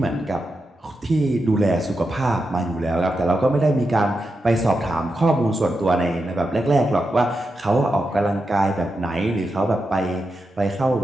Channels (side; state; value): both; normal; correlation 0.88